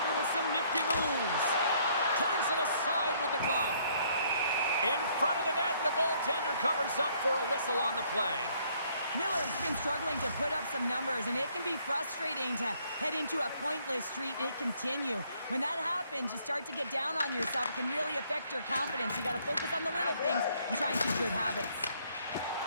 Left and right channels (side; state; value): both; inverted; correlation -0.65